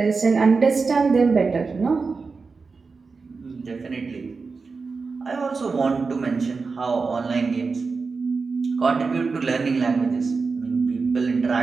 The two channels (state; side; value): quieter; left; 4.5 dB